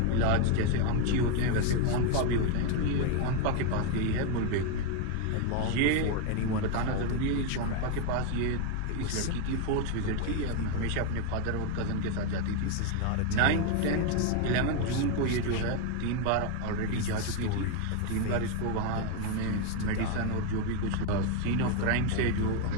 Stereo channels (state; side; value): different; both; correlation 0.01